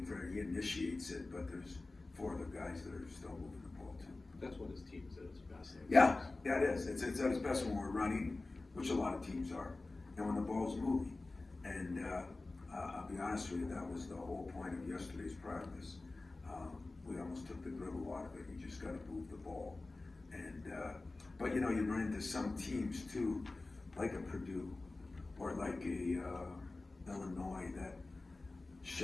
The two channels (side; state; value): right; quieter; 3.2 dB